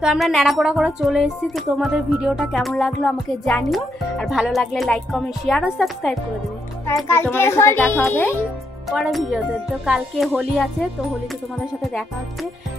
আমরা ন্যাড়াপোড়া করে চলে এসেছি। তো তোমাদের ভিডিওটা কেমন লাগলো আমাকে জানিও, আর ভালো লাগলে লাইক কমেন্ট শেয়ার ও সাবস্ক্রাইব করে দেবে। তোমাদের সাথে দেখা হবে পরের ভিডিওতে। তো কালকে হোলি আছে, তো হোলিতে তোমাদের সাথে দেখা হচ্ছে।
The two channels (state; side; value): normal; both; correlation 0.78